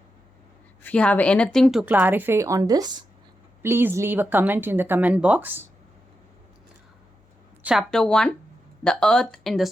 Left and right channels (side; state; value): both; normal; correlation 0.88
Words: If you have anything to clarify on this, please leave a comment in the comment box. Chapter 1, The Earth in the